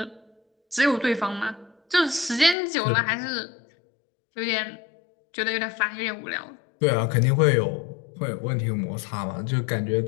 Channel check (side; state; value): right; drops out; at 2.6 s